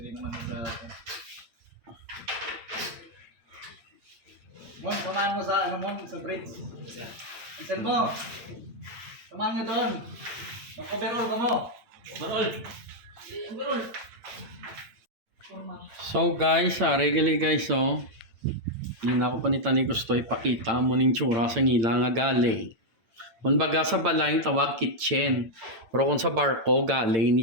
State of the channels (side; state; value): left; late; 8.9 ms